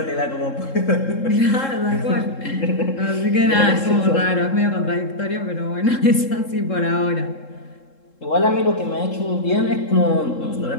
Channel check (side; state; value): right; late; 3.7 ms